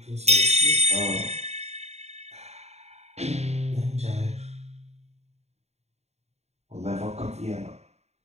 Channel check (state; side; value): late; left; 0.31 ms